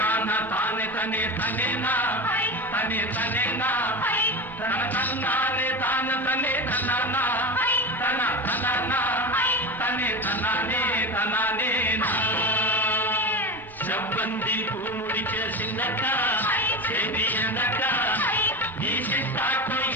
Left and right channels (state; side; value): normal; both; correlation 0.24